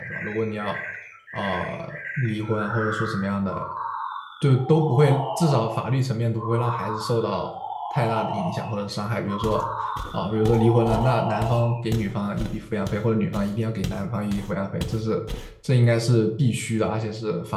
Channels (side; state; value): both; identical; correlation 1.00